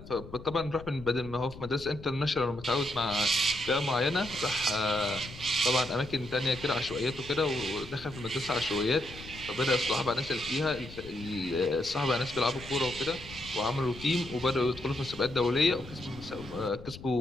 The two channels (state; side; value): noise; left; rumble, 15 dB below the sound